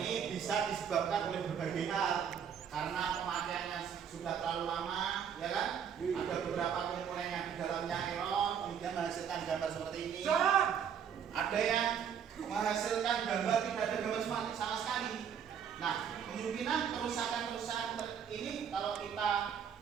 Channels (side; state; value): left; quieter; 7.9 dB